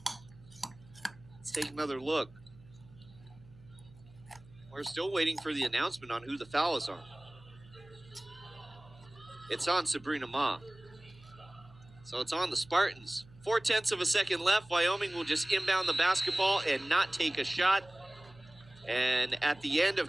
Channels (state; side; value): noise; right; hum, 23 dB below the sound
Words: Let's take another look. We're still waiting for the announcement on who the foul is on. It's on Sabrina Ma. So it's on the Spartans. 0.4 of a second left. Wyoming will just inbound the basketball and not take a shot. And at the end